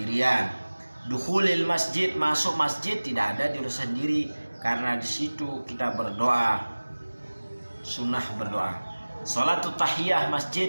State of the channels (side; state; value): both; inverted; correlation -1.00